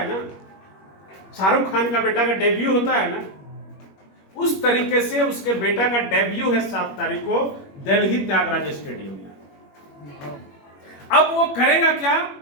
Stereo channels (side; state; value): right; late; 21 ms